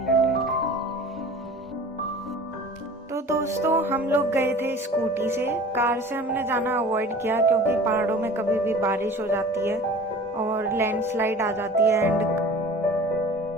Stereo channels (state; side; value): normal; both; correlation 0.42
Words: trek. तो दोस्तों हम लोग गए थे स्कूटी से। कार से हमने जाना अवॉइड किया क्योंकि पहाड़ों में कभी भी बारिश हो जाती है और लैंडस्लाइड आ जाती है।